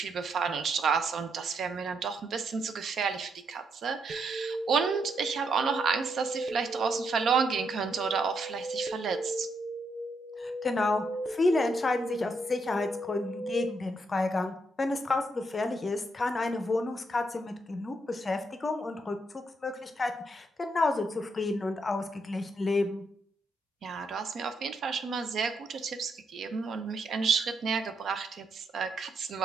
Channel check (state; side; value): normal; both; correlation 0.78